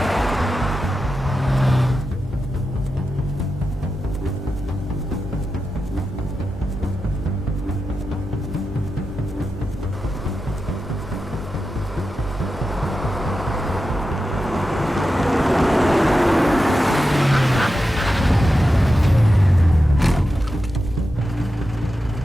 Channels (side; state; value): both; normal; correlation 0.90